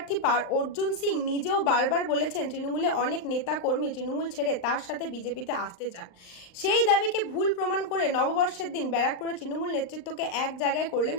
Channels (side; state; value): right; late; 39 ms